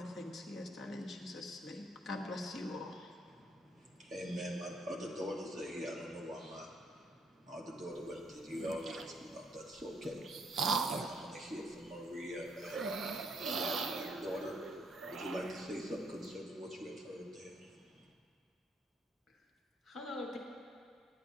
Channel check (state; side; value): normal; both; correlation 0.70